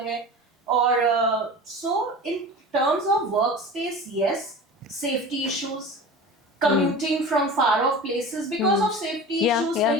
है और so in terms of work space yes safety issues commuting from far off places because of safety issues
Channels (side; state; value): both; normal; correlation 0.34